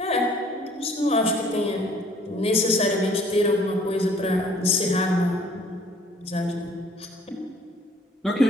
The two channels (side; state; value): both; normal; correlation 0.57